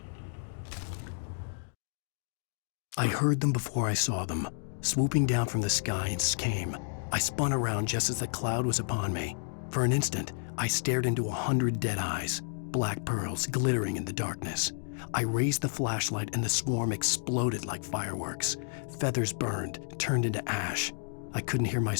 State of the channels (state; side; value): silent; right; digital silence